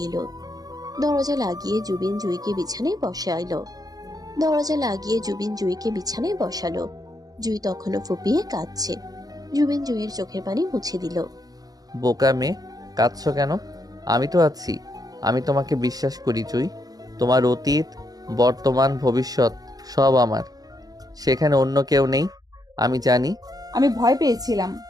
এলো। দরজা লাগিয়ে জুবিন জুইকে বিছানায় বসালো। জুই তখনও ফুপিয়ে কাঁদছে। জুবিন জুইয়ের চোখের পানি মুছে দিল। বোকা মেয়ে, কাঁদছো কেন? আমি তো আছি, আমি তোমাকে বিশ্বাস করি জুই। তোমার অতীত, বর্তমান, ভবিষ্যৎ সব আমার, সেখানে অন্য কেউ নেই, আমি জানি। আমি ভয় পেয়েছিলাম,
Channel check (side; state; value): left; late; 0.18 ms